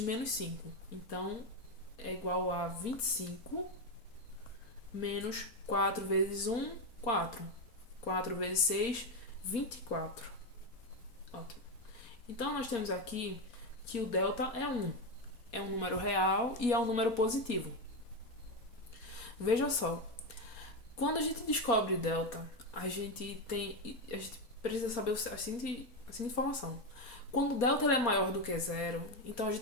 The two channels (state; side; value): late; right; 4.3 ms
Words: menos 5. Então, é igual a 25 menos 4 vezes 1, 4. 4 vezes 6, 24. Ótimo. Então, nós temos aqui que o delta é 1. É um número real e é um número positivo. Veja só, quando a gente descobre delta, a gente precisa saber a seguinte informação. Quando o delta é maior do que zero, então a